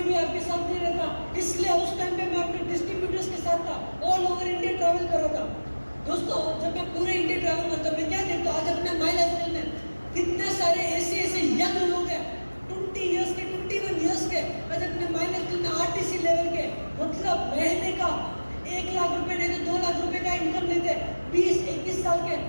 भी आपके साथ नहीं रहता। इसलिए उस टाइम पे मैं अपने डिस्ट्रीब्यूटर्स के साथ था, ऑल ओवर इंडिया ट्रैवल कर रहा था। दोस्तों जब मैं पूरे इंडिया ट्रैवल करता हूँ, मैं क्या देखता हूँ, आज अपने माई लाइफस्टाइल में कितने सारे ऐसे यंग लोग हैं, 20 इयर्स के, 21 इयर्स के, आज अपने माई लाइफस्टाइल में आरटीसी लेवल के, मतलब महीने का 1 लाख रुपए नहीं तो 2 लाख रुपए का इनकम लेते, 20-21 साल के।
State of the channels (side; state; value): both; inverted; correlation -1.00